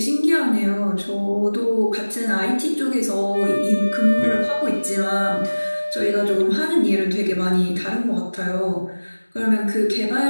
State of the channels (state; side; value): inverted; both; correlation -1.00